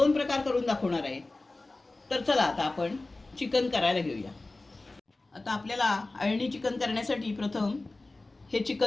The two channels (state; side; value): quieter; right; 3.1 dB